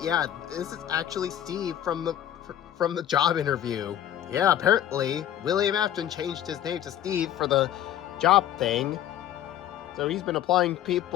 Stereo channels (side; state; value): right; quieter; 11.4 dB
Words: yeah, this is actually Steve from the job interview. Yeah, apparently William Afton changed his name to Steve for the job thing. So he's been applying